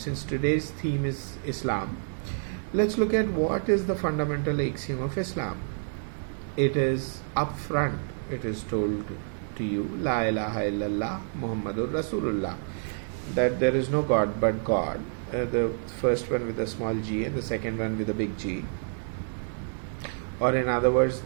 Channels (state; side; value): silent; left; 59 dB below the other